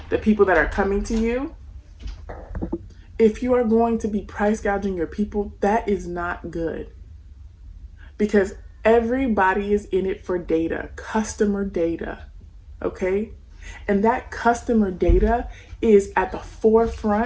the people that are coming to you, if you are going to be price gouging your people, that is not good. Because everybody is in it for data, customer data, okay? And that customer data is at the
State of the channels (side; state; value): both; identical; correlation 1.00